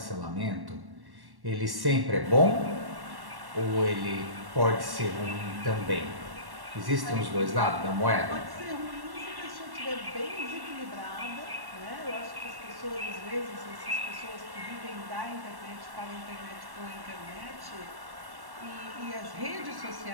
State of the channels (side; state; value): left; late; 1.1 ms